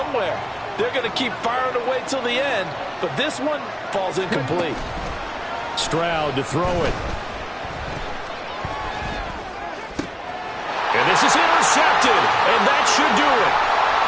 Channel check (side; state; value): both; identical; correlation 1.00